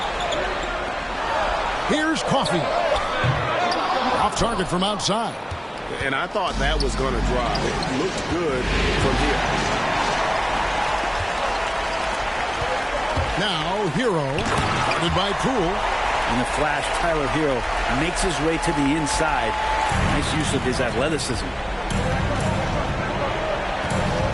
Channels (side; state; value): both; identical; correlation 1.00